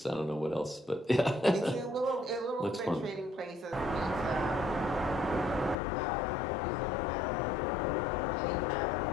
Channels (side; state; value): right; drops out; at 5.8 s